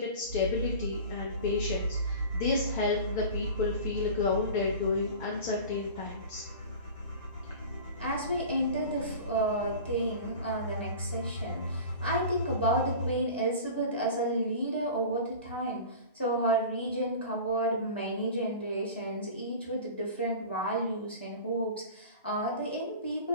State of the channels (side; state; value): both; inverted; correlation -0.36